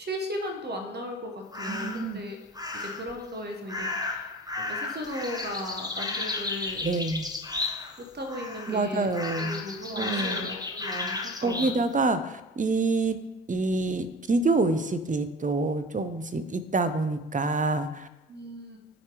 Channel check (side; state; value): both; normal; correlation 0.37